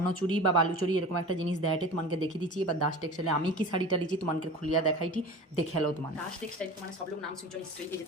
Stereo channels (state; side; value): normal; both; correlation 0.35